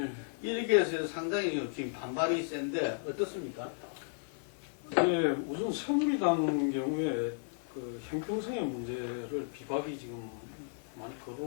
이렇게 해서 상당히 지금 반발이 센데 어떻습니까? 네, 우선 새누리당 경우에 형평성의 문제를 비박이 지금 많이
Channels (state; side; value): silent; right; digital silence